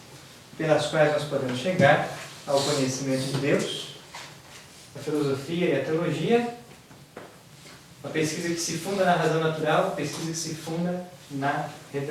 pelas quais nós podemos chegar ao conhecimento de Deus: a filosofia e a teologia. Uma pesquisa que se funda na razão natural, uma pesquisa que se funda na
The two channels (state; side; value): identical; both; correlation 1.00